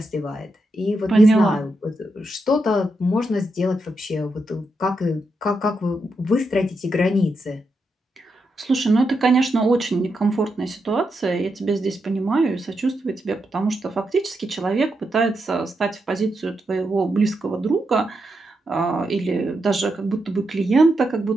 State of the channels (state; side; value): normal; both; correlation 0.84